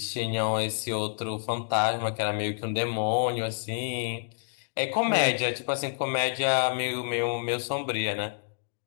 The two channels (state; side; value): silent; right; digital silence